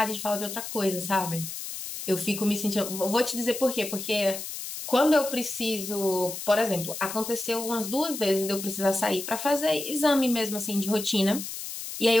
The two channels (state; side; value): noise; left; hiss, 8 dB below the sound